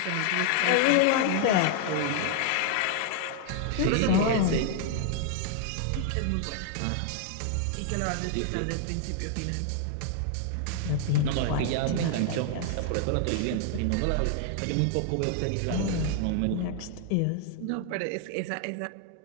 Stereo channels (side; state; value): both; different; correlation 0.00